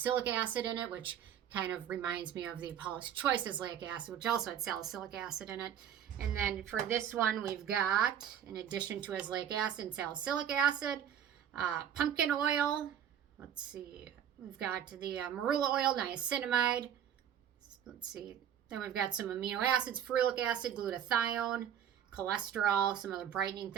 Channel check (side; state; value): left; quieter; 9.4 dB